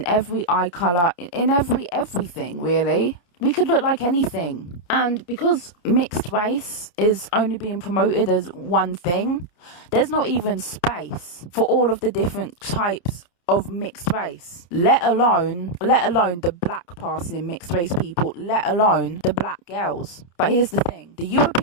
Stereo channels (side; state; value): right; late; 29 ms